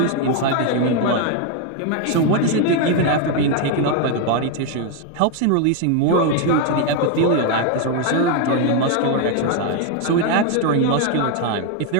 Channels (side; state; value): both; different; correlation 0.01